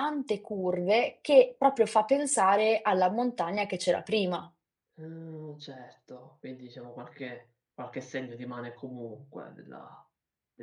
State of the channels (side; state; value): both; identical; correlation 1.00